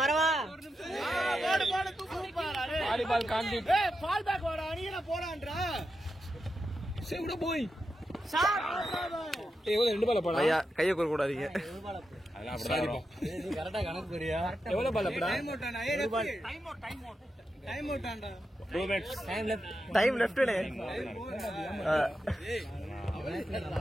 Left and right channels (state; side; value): normal; both; correlation 0.88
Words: வரவா? வாலிபால் காண்டி. பால் பேக் வாடா, நீங்க போறான்றா. சேவுடா போய். ஏய் எவ்வளவு 2 பால் போடா. ஐயா கையை கூற கூடாதீங்க. அதெல்லாம் அப்படிதான் வரும். நீ கரெக்டா கணக்கு போறியா? எவ்வளவு பால் போடா? டைம் அவுட்டாண்டா. 2 மினிட்ஸ். டைம் லெஃப்ட்னே.